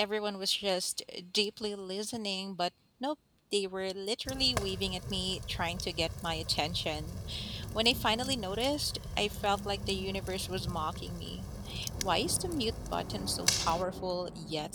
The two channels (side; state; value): both; identical; correlation 1.00